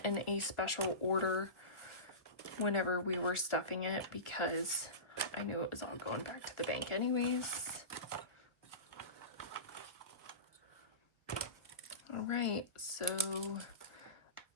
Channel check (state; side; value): late; right; 1.4 ms